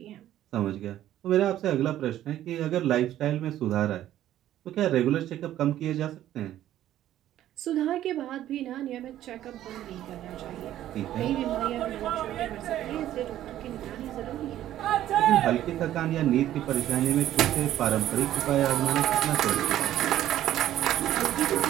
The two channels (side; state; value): left; quieter; 12.7 dB